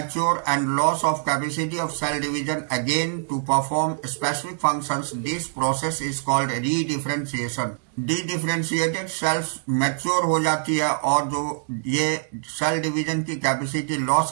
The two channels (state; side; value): silent; left; digital silence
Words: and loss of capacity of cell division again to perform specific functions. This process is called redifferentiation. Dedifferentiated cells mature हो जाती है और जो ये सेल डिवीजन की कैपेसिटी